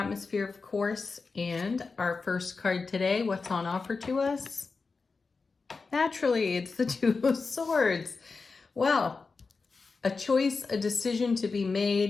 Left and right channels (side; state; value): right; quieter; 4.4 dB